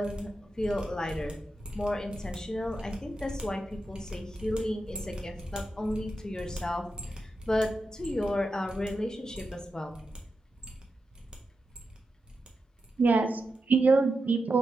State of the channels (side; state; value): both; normal; correlation 0.89